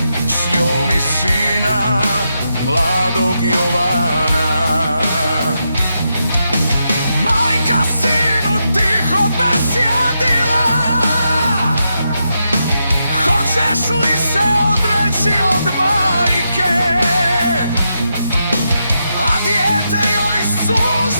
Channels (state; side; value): inverted; both; correlation -0.84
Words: s njom i sina mladog Jovana. Majka sinu tiho besjedila, hoćeš li se odreći od majke, a dijete joj